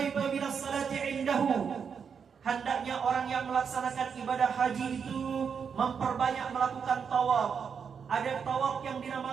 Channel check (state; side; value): quieter; left; 6.6 dB